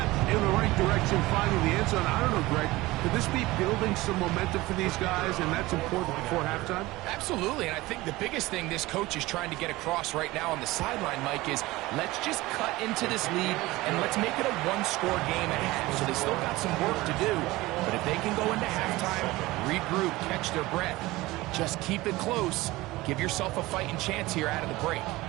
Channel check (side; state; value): left; quieter; 19.5 dB